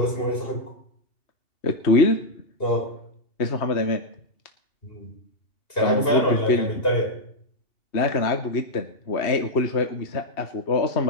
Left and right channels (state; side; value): late; right; 2.8 ms